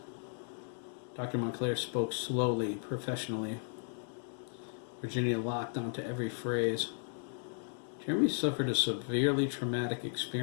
Dr. Montclair spoke slowly, professionally. Virginia locked onto every phrase. Jeremy suffered a severely traumatic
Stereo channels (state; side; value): silent; right; 54 dB below the other